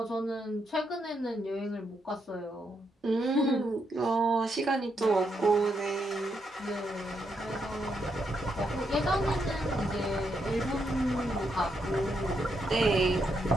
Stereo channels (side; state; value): both; normal; correlation 0.80